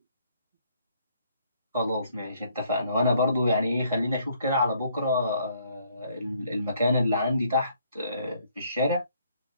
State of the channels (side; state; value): both; inverted; correlation -0.66